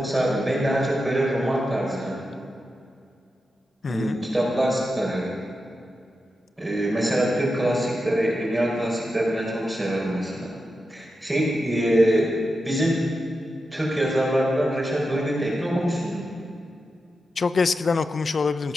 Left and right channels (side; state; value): both; normal; correlation 0.89